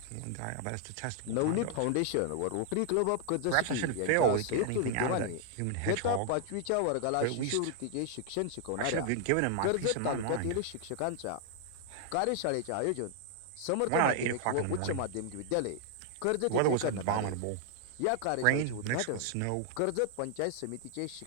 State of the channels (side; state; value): both; different; correlation 0.00